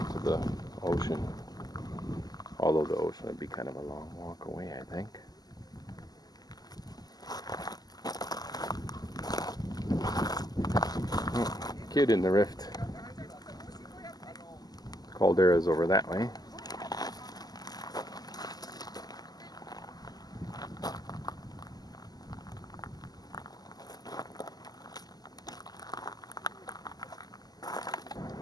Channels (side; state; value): right; late; 0.19 ms